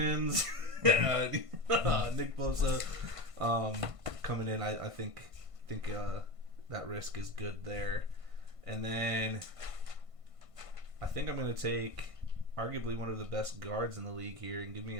Nick Bosa coming in, I think that risk is good there. And then I think I'm going to take arguably one of the best guards in the league here and give me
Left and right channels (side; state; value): left; late; 1.5 ms